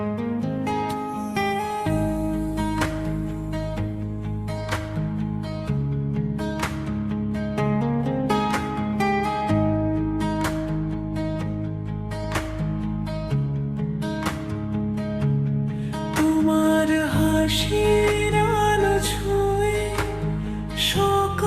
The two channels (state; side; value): identical; both; correlation 1.00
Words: তোমার হাসির আলো ছুঁয়ে